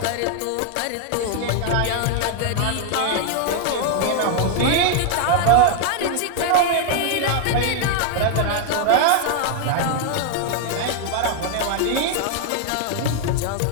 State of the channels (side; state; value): both; different; correlation 0.00